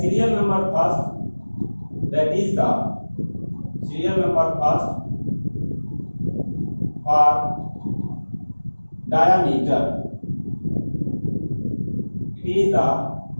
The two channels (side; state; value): both; inverted; correlation -1.00